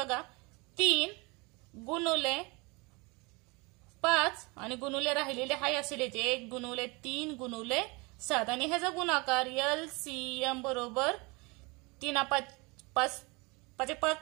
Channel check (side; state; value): left; quieter; 27.1 dB